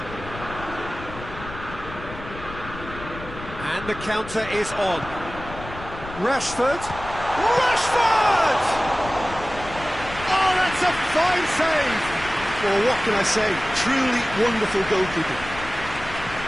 And the counter is on. Rashford! Rashford! Oh, that's a fine save! Well, what can I say? Truly wonderful goalkeeping.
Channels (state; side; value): noise; left; rumble, 13 dB below the sound